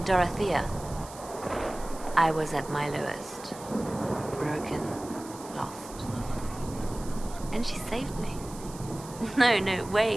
Dorothea. I was at my lowest. Broken. Lost. And she saved me. No,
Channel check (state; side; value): noise; right; hiss, 17 dB below the sound